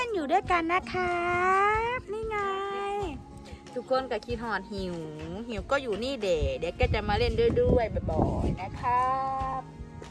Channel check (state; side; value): identical; both; correlation 1.00